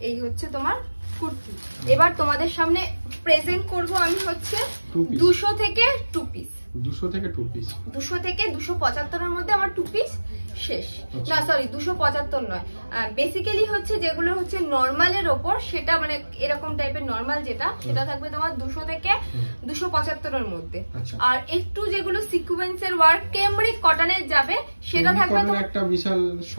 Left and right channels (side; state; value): both; inverted; correlation -1.00